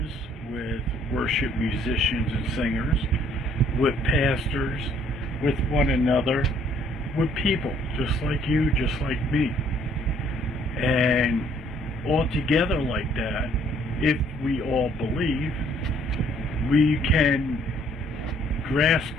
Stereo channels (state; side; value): normal; both; correlation 0.62